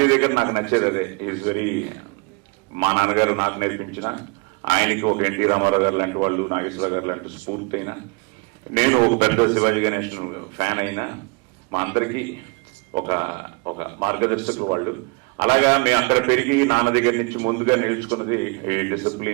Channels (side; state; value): left; quieter; 29.6 dB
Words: దగ్గర నాకు నచ్చేది అదే. ఈజ్ వెరీ, మా నాన్నగారు నాకు నేర్పించిన, ఆయనకి ఒక ఎన్టీ రామారావు గారు లాంటి వాళ్ళు, నాగేశ్వర గారు లాంటి స్ఫూర్తి అయినా, నేను ఒక పెద్ద శివాజీ గణేష్ ఫ్యాన్ అయినా, మా అందరికీ ఒక ఒక మార్గదర్శకులు వాళ్ళు. అలాగా మేము అక్కడ పెరిగి నాన్న దగ్గర నుంచి ముందుగా నేర్చుకున్నది ఈ